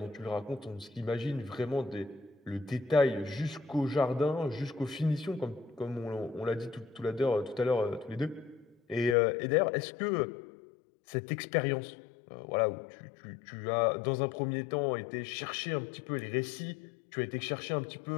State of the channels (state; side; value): drops out; right; at 9.2 s